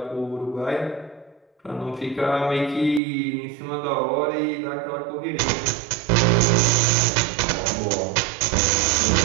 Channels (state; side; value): drops out; left; at 3.0 s